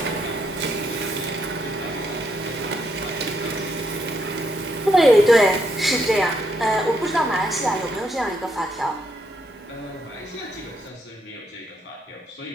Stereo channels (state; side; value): normal; both; correlation 0.76